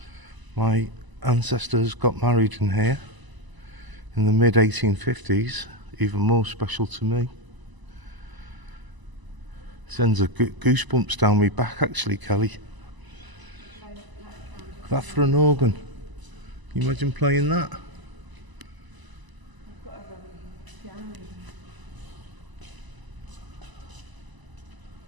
my ancestors got married in here in the mid 1850s, even more special to me. Sends a goosebumps down my back, actually, Kelly. That for an organ. Can you imagine playing that?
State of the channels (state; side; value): late; left; 1.0 ms